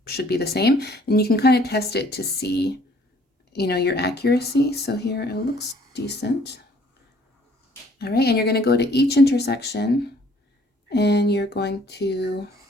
should be the same, and you can kind of test it to see, your accuracy. So here it looks decent. All right, and you're going to go to each intersection, and you're going to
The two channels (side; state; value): both; normal; correlation 0.59